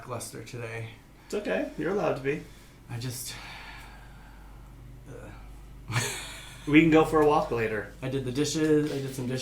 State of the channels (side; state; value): both; identical; correlation 1.00